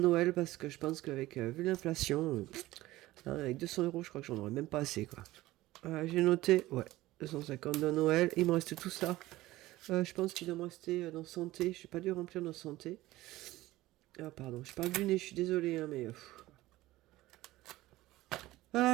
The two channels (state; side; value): quieter; left; 17.3 dB